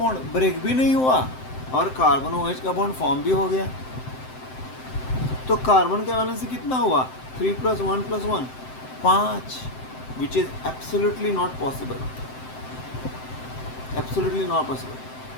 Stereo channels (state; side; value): late; right; 7.8 ms